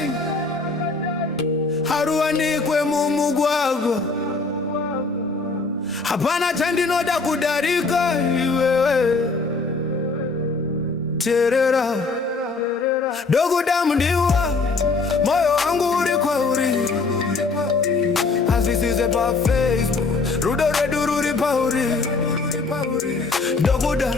haruwanikwe mumugwagwa. Hapana chandinoda kudarika iwewe terera Ndoguda mndiwa moyo wangu uri kwauri azisize pa Facebook rudo redu ruri pauri.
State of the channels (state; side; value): quieter; right; 4.0 dB